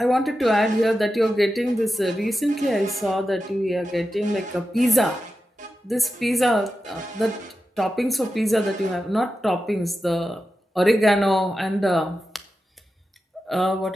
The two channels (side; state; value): both; normal; correlation 0.91